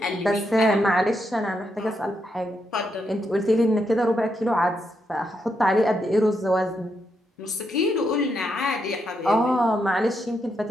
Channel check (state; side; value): normal; both; correlation 0.81